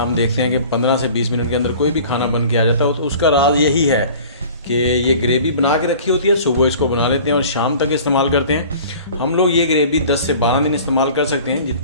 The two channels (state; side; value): inverted; both; correlation -0.45